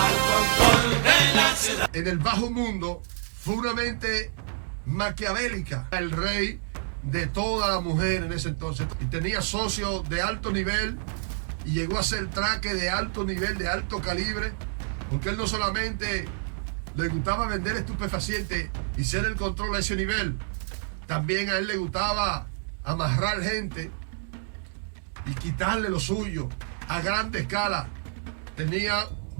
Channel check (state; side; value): silent; left; digital silence